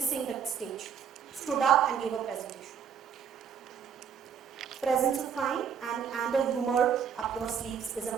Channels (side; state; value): left; quieter; 7.5 dB